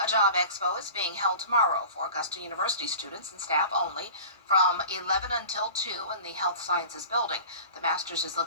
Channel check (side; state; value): both; inverted; correlation -0.38